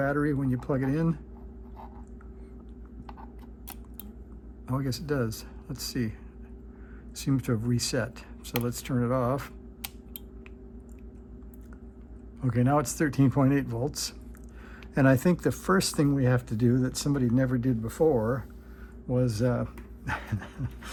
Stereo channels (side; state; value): both; identical; correlation 1.00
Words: when you plug it in. Oh, I guess it does. Let's see. Seems to have reset. So let's turn it off. Okay, now it's 13.8 volts. And I think the first thing we have to do that somebody never did before was